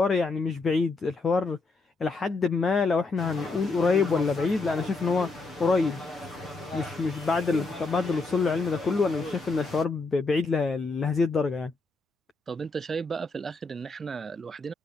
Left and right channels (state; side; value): quieter; right; 3.6 dB